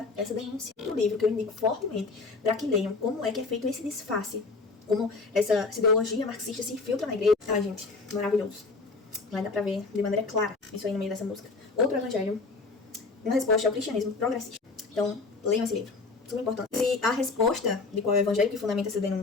essa denúncia. O livro que eu indico fortemente para que leiam como é que é feito esse disfarce, como essa ideologia marxista se infiltra na igreja. Ah, gente, maravilhoso. Vai dar pra ver de maneira clara isso aí no meio dessa música. Outro Evangelho, uma resposta ao cristianismo progressista. Então, leiam esse livro. Super importante. Se a resposta de qual é o Evangelho que fundamenta essa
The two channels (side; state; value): right; quieter; 3.9 dB